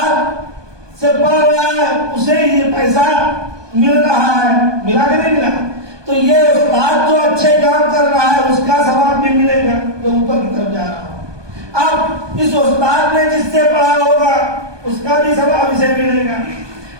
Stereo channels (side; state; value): left; late; 1.2 ms